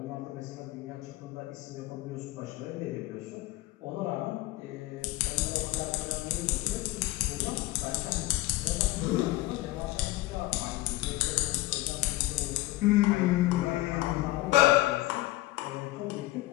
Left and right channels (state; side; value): quieter; right; 18.2 dB